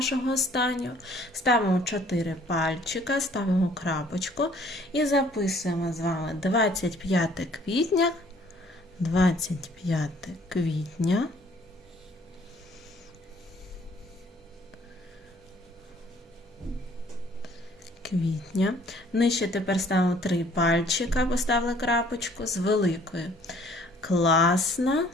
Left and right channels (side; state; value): both; normal; correlation 0.58